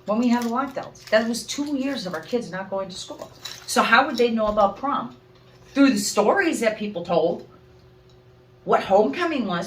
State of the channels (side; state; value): both; identical; correlation 1.00